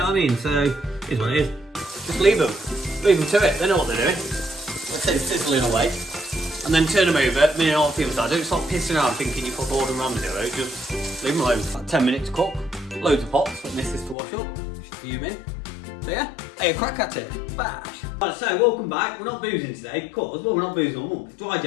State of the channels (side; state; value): right; drops out; at 14.2 s